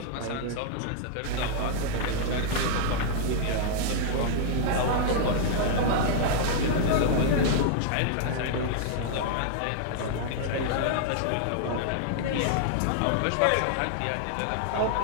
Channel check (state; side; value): different; both; correlation -0.01